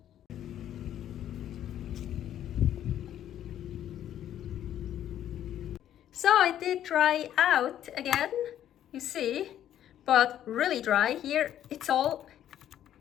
So it did dry out again, you see, but really dry. Here it's all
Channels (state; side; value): quieter; right; 11.1 dB